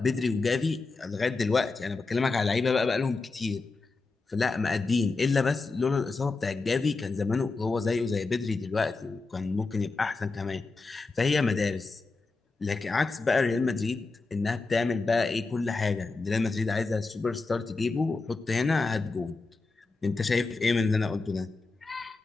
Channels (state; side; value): quieter; right; 3.8 dB